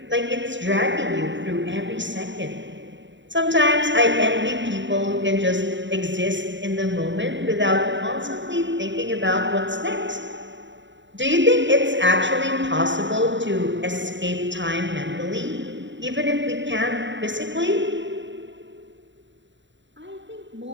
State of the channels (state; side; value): late; left; 0.54 ms